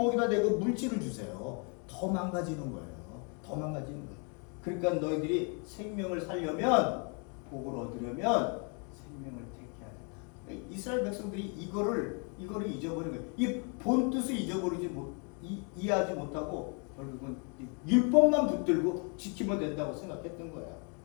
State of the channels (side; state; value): right; quieter; 37.2 dB